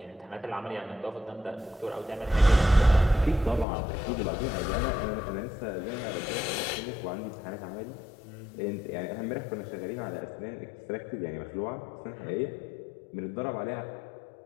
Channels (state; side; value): drops out; right; at 3.7 s